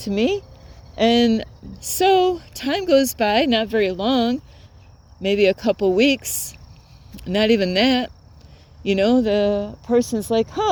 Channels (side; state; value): both; identical; correlation 1.00